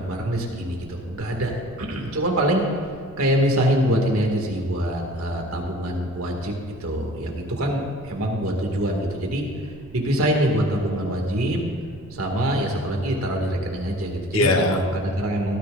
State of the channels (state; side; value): noise; right; rumble, 18 dB below the sound